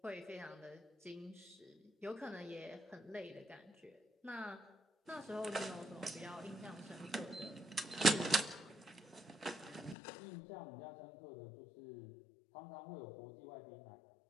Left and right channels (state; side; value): drops out; right; at 10.0 s